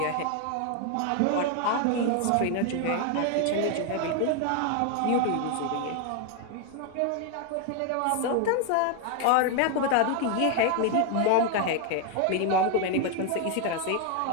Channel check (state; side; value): different; both; correlation 0.01